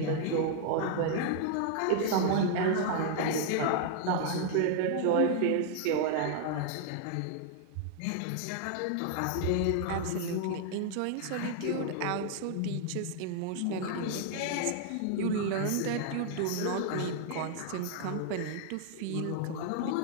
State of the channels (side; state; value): both; different; correlation 0.00